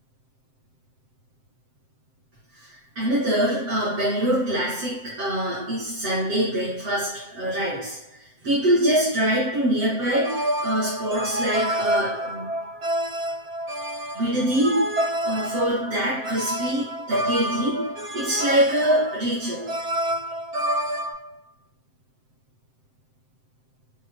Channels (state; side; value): late; left; 7.7 ms